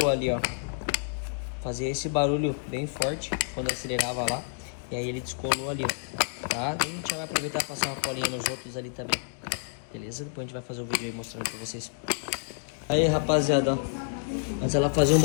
ali, ó. Fazia esse barulho bem forte quando acelerava lá. E aí ele descolou ali, tá? A gente vai aproveitar e passar uma colinha nos outros ali também. Beleza? Depois a gente vai fazer o vídeo aí mostrando pra vocês. Aí, rapaziada, ó. Antes ela fazia um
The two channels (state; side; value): silent; right; digital silence